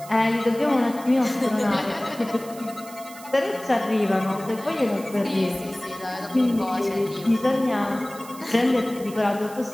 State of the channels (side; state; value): right; noise; hiss, 18 dB below the sound